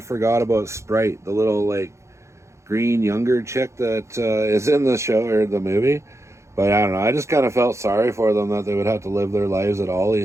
about Sprite, the little, like, green younger chick that is in the show or the movie. But I don't know. I just kind of felt sorry for them that they would have to live their lives at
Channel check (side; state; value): left; late; 0.14 ms